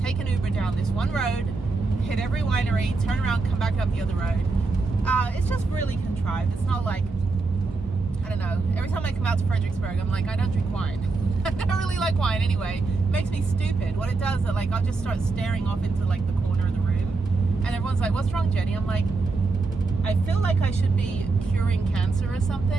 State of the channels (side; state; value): left; quieter; 3.8 dB